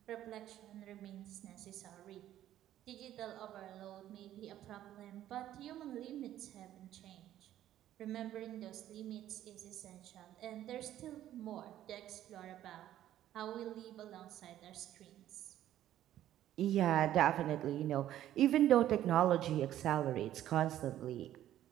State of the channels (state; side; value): quieter; left; 12.4 dB